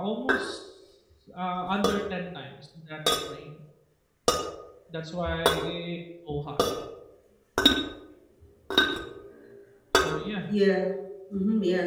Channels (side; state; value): both; identical; correlation 1.00